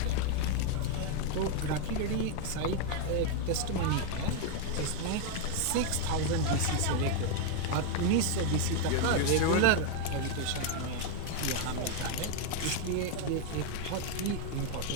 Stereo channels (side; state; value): both; different; correlation 0.00